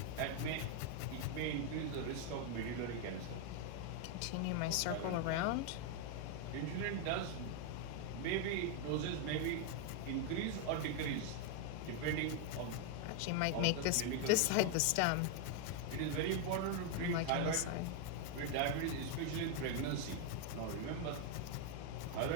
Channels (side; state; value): both; different; correlation 0.00